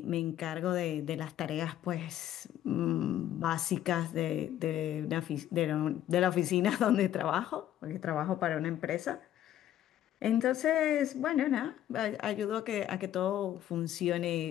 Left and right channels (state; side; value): quieter; right; 12.0 dB